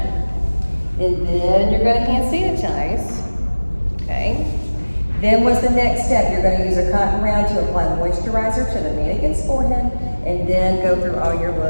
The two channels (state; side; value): inverted; both; correlation -1.00